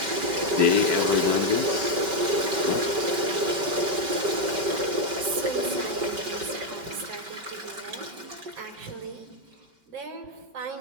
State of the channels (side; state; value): left; late; 5.2 ms